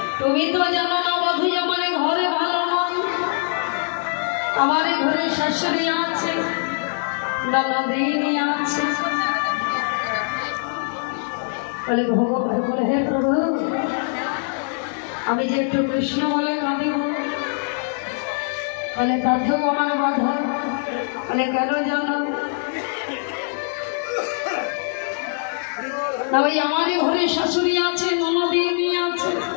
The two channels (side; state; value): right; silent; 64 dB below the other